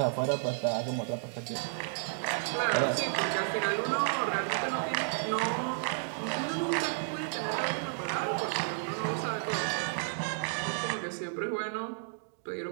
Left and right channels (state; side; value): silent; left; digital silence